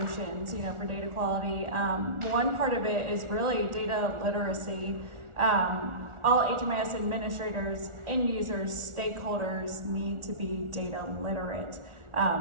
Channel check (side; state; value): left; late; 1.4 ms